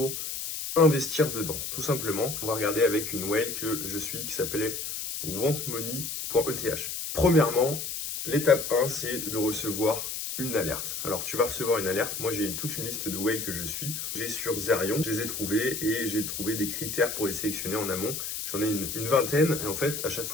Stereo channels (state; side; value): noise; left; hiss, 5 dB below the sound